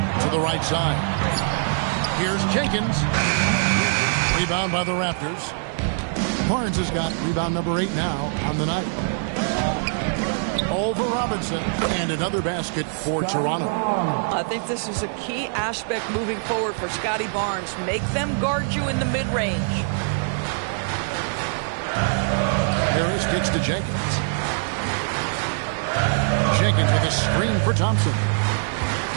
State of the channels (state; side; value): silent; left; digital silence